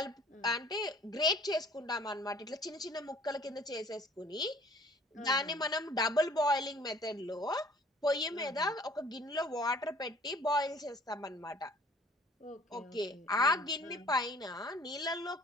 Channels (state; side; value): normal; both; correlation 0.53